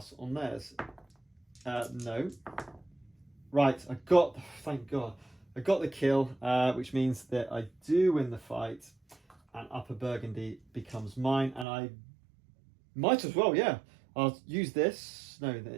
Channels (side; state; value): left; drops out; at 11.7 s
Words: on theirs. No. Right, thank God. I got the kill, which means that I do win the fight. And Upper Burgundy becomes mine. And I might as well, yeah. I'll use this. No,